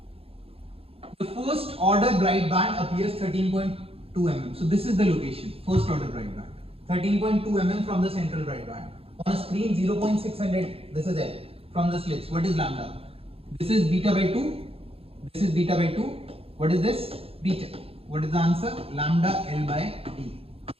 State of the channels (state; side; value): late; left; 0.28 ms